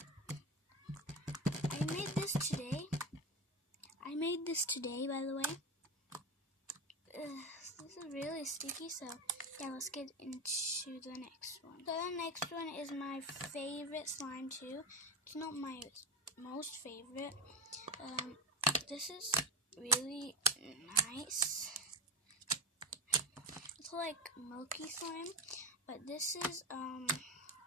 I made this today, by the way. This is really sticky, so yeah, let's get into the next one. So the next one is my favorite slime too. It's not my most favorite. This is really nice. It's like milky slime, but this is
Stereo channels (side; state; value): both; normal; correlation 0.22